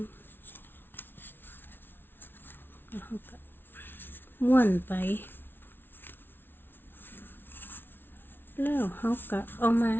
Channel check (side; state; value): right; late; 0.10 ms